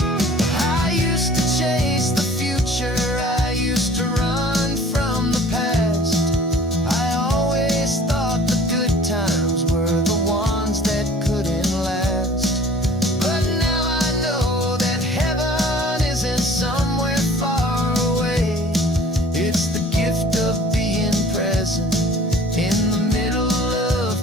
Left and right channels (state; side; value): normal; both; correlation 0.49